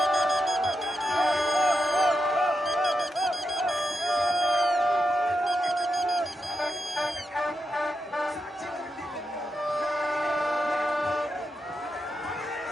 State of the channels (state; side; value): normal; both; correlation 0.86